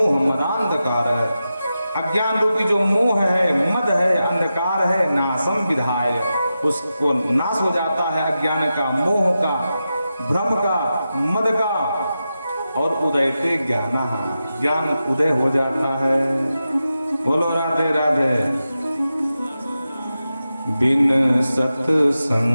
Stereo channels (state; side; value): inverted; both; correlation -0.91